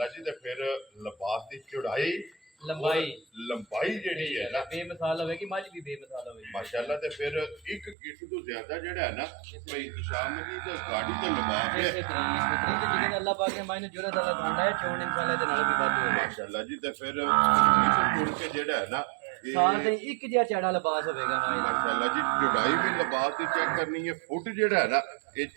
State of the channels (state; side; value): drops out; left; at 8.0 s